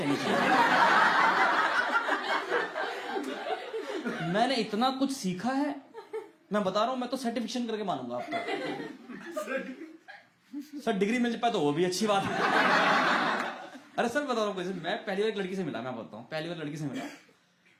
चाहिए। मैंने इतना कुछ सीखा है, मैं बता रहा हूं, मैं तो सर्टिफिकेशन करके मानूंगा आपको। सर डिग्री मिल जाए तो वो भी अच्छी बात है। अरे सर बता रहा हूँ, मैं पहली बार एक लड़की से मिला, मैं बताता हूँ, पहली बार लड़की से मिला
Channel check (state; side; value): identical; both; correlation 1.00